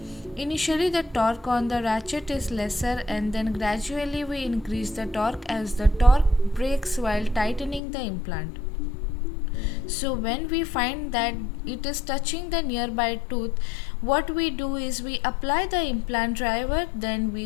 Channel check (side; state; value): right; drops out; at 7.8 s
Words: Initially the torque on the ratchet is lesser and then gradually we increase the torque as the torque breaks while tightening the implant. So when we find that it is touching the nearby tooth, what we do is we apply the implant driver, then